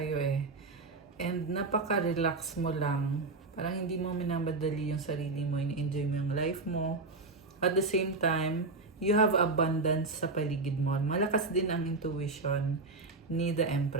eh. And napaka-relax mo lang. Parang hindi mo minamadali yung sarili mo, in-enjoy mo yung life mo. At the same time, you have abundance sa paligid mo. Malakas din ang intuition ni the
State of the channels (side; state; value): left; quieter; 3.6 dB